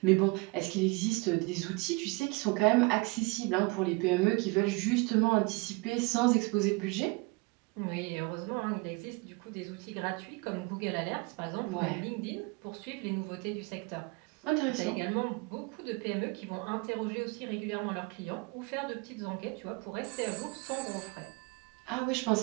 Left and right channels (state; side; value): quieter; left; 26.6 dB